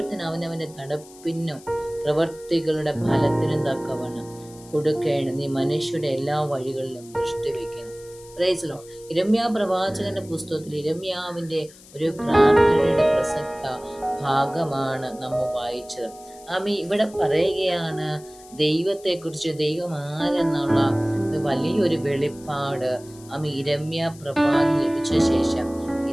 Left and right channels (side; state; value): left; noise; hiss, 22 dB below the sound